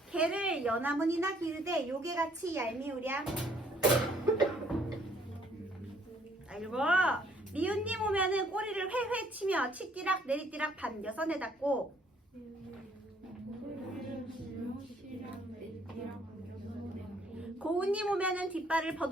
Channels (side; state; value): both; normal; correlation 0.63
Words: 개를 연함은 이나기르되 요게같이 얄미우랴. 자, 읽어. 미운님 오면은 꼬리를 회회 치며 치띠락 내리띠락 반겨서 내닫고 고운님 오면은 뒷발을